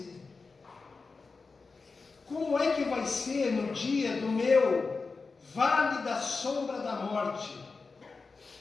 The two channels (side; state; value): right; quieter; 4.3 dB